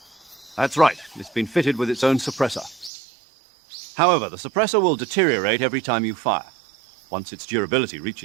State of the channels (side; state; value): left; drops out; at 2.9 s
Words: That's right. It's been fitted with its own suppressor. However, the suppressor will deteriorate every time you fire. Once its durability